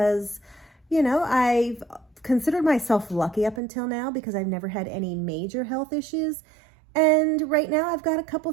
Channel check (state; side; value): drops out; left; at 3.6 s